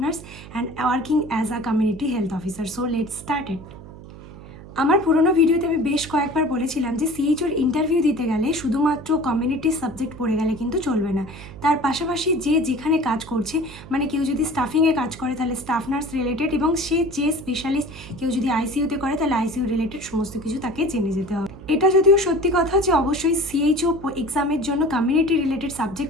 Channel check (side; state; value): right; noise; hum, 16 dB below the sound